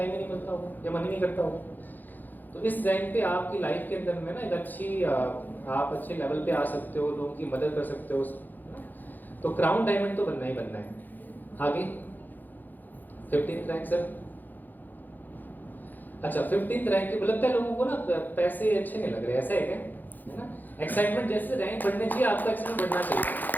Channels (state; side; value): late; right; 0.086 ms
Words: ही नहीं मिलता होगा या मन ही नहीं करता होगा। तो इस रैंक पे आपकी लाइफ के अंदर में ना एक आप अच्छे लेवल पे आ सकते हो, लोगों की मदद कर सकते हो। तो क्राउन डायमंड तो बनना ही बनना है। आगे 15th रैंक सर। अच्छा, 15th रैंक के लगता है लोगों को ना पैसे अच्छे नहीं लग रहे, ऐसा है क्या, है ना। एक्साइटमेंट जैसे रैंक बढ़ने चाहिए, आपका एक्साइटमेंट बढ़ना चाहिए।